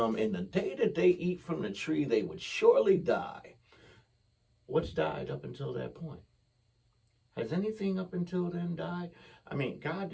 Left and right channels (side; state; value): both; identical; correlation 1.00